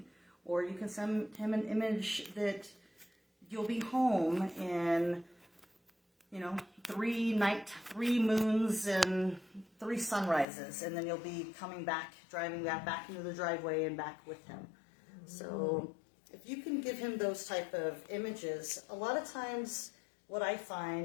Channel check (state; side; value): drops out; right; at 10.5 s